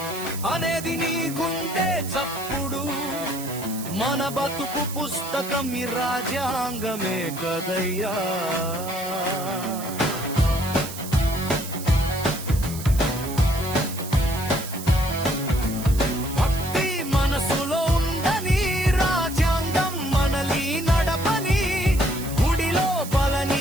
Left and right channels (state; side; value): noise; right; hiss, 11 dB below the sound